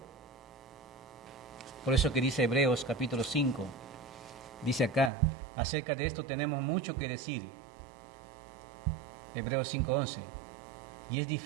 Por eso que dice Hebreos capítulo 5, dice acá, acerca de esto tenemos mucho que decir. Hebreos 5:11, y es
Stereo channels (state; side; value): drops out; left; at 5.1 s